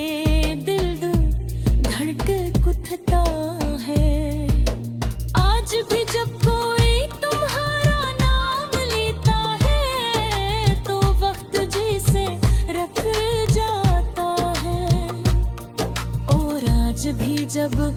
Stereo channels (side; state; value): both; identical; correlation 1.00